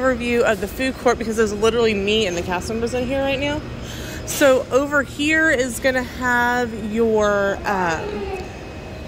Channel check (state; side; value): identical; both; correlation 1.00